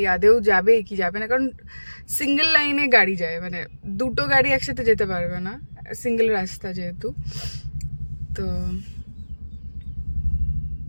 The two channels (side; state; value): both; inverted; correlation -1.00